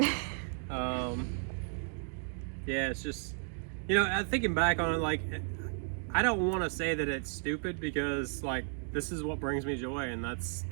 Yeah, it's just, you know, thinking back on it, like, I don't want to say that it's stupid, because, like, this is what brings me joy, and that's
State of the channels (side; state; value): left; silent; 55 dB below the other